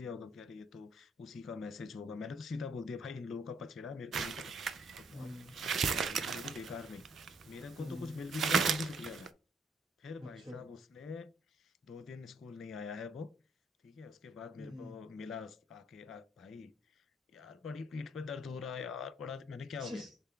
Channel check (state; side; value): normal; both; correlation 0.68